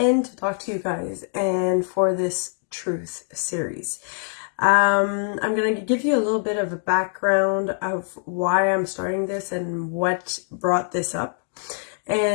to talk to you guys and for this truth series. I'm going to give you a little bit of a background of why I'm starting this and what brought this up.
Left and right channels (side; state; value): right; silent; digital silence